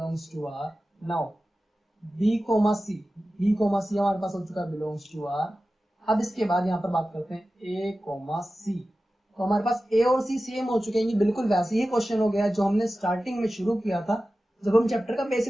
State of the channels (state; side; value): normal; both; correlation 0.95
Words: to r। Now b, c हमारे पास हो चुका है बिलोंग्स टू r। अब इसके बाद यहाँ पर बात करते हैं a, c। तो हमारे पास a और c सेम हो चुके हैं। ये बिल्कुल वैसे ही क्वेश्चन हो गया जो हमने स्टार्टिंग में शुरू किया था जब हम चैप्टर का